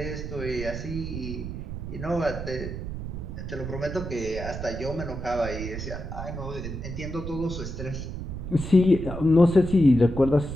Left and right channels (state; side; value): noise; right; rumble, 7 dB below the sound